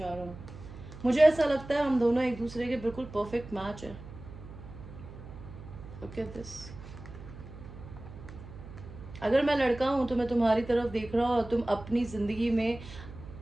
रहा हूँ। मुझे ऐसा लगता है हम दोनों एक दूसरे के बिल्कुल परफेक्ट मैच है। Look at this. अगर मैं लड़का हूँ तो मैं तुम्हारी तरफ देख रहा हूँ और तुम अपनी ज़िंदगी में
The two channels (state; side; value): noise; right; hum, 15 dB below the sound